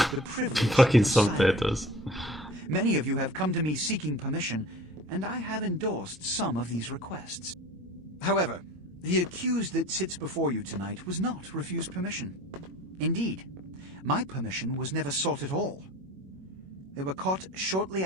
privilege Fucking of silence. subtitles. Many of you have come to me seeking permission, and I have endorsed some of these requests. However, the accused that sits before you tonight was not refused permission. Indeed, my permission was never sought at all. They were caught shortly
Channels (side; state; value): both; normal; correlation 0.43